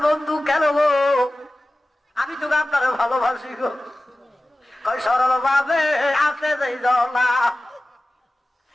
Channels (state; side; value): normal; both; correlation 0.96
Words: বন্ধু কেন গো, আমি তো আপনার ভালোবাসি গো। কয় সরল ভাবে আছে যেই জলা,